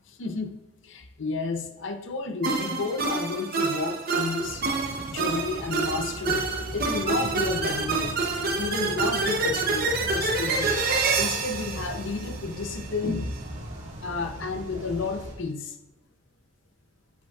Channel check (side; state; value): both; normal; correlation 0.20